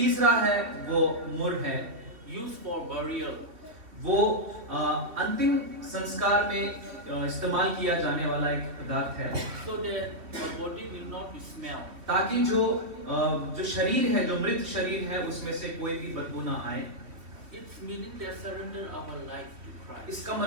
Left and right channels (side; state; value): left; late; 3.1 ms